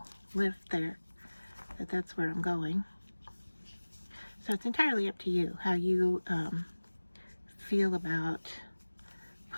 lift there that that's where I'm going. So it's entirely up to you how you feel about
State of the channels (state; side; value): inverted; both; correlation -1.00